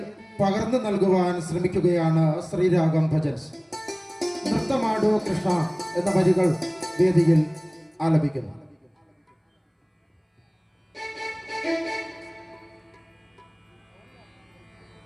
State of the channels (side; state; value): both; identical; correlation 1.00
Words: പകർന്നു നൽകുവാൻ ശ്രമിക്കുകയാണ് ശ്രീരാഗം ഭജൻസ്. നൃത്തമാടോ കൃഷ്ണ എന്ന വരികൾ വേദിയിൽ ആലപിക്കുന്നു.